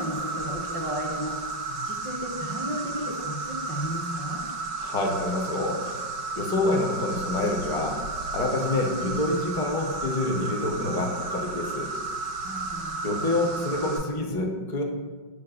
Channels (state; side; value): late; left; 5.4 ms